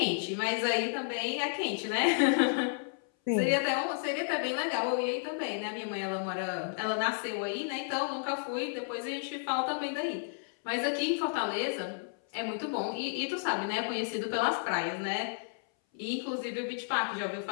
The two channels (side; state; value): right; silent; 56 dB below the other